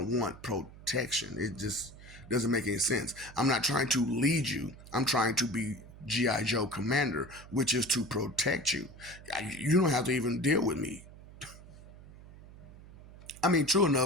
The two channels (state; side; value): noise; right; hum, 18 dB below the sound